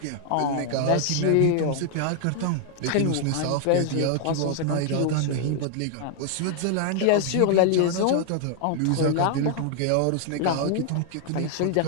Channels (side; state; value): both; different; correlation 0.00